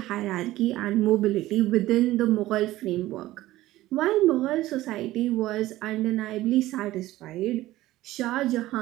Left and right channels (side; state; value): left; quieter; 16.2 dB